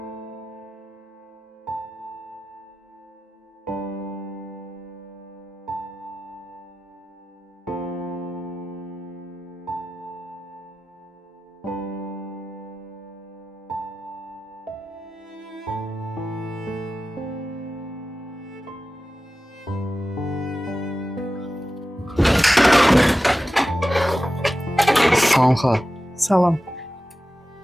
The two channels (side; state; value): both; normal; correlation 0.94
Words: Salam xala. Salam.